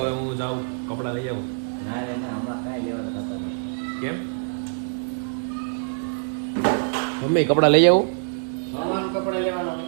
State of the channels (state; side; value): silent; left; 62 dB below the other